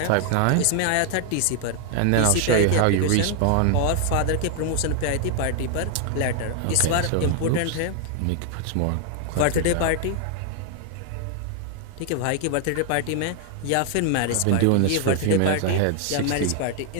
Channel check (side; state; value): both; different; correlation 0.00